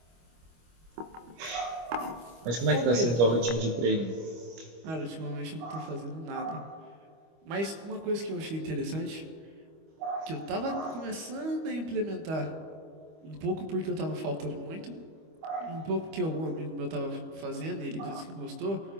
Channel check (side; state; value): left; late; 25 ms